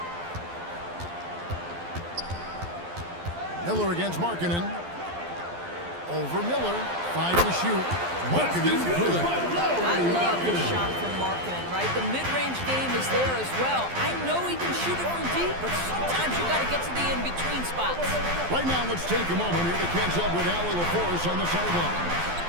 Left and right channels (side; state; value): left; late; 12 ms